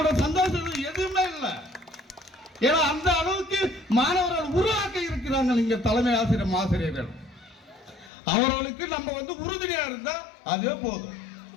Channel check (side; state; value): right; drops out; at 8.1 s